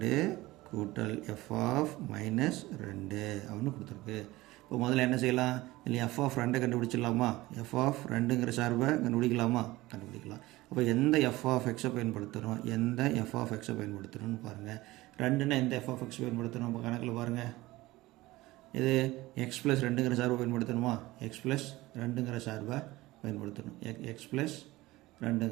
கூட்டல் எஃப் ஆஃப் -2 அப்படின்னு கொடுத்துருக்கு. இப்போ முதல்ல என்ன செய்யலாம்? இல்லை எஃப் ஆஃப் 2 கண்டுபிடிச்சிடலாமா? எஃப் ஆஃப் 2ங்கிற சார்பை கண்டுபிடிக்கலாமா? கண்டுபிடிக்கலாம். அப்போ எந்த எஃப் ஆஃப் எக்ஸை பயன்படுத்தணும், எந்த எஃப் ஆஃப் எக்ஸை பயன்படுத்தணும்னு பாருங்கள். 2ன்னா எந்த எஃப் ஆஃப் எக்ஸ் பயன்படுத்தணும்? இப்போ கணக்கில் பாருங்கள். இது எக்ஸ் ப்ளஸ் 2ங்கிற சார்பை பயன்படுத்தணுமா? எக்ஸ் ப்ளஸ் 2ங்கிற சார்பை பயன்படுத்தணும். எக்ஸ் ப்ளஸ்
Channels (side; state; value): left; quieter; 18.9 dB